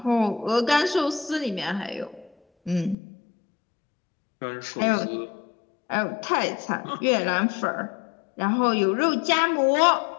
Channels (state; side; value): drops out; right; at 3.0 s